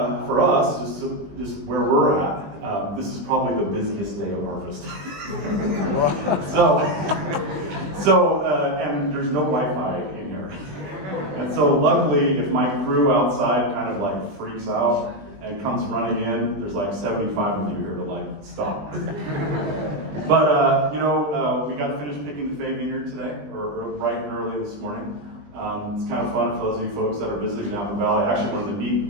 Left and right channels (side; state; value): left; late; 20 ms